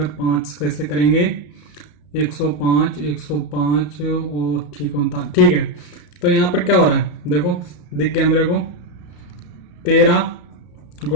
5 कैसे करेंगे 105, 105 और ठीक 39, ठीक है। तो यहां पर क्या हो रहा है, देखो दिख गया मेरे को, 13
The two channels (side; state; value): right; late; 34 ms